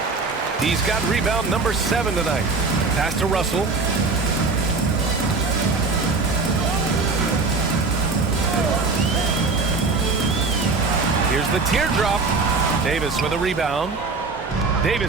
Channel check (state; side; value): quieter; left; 4.0 dB